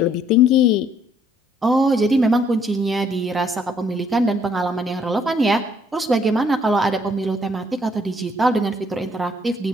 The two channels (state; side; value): normal; both; correlation 0.66